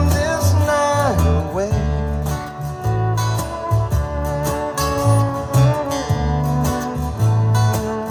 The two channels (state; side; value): identical; both; correlation 1.00